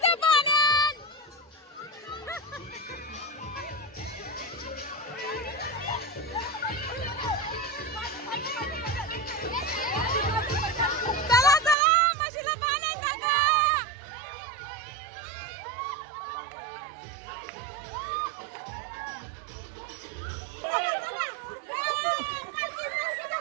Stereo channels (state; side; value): drops out; left; at 11.8 s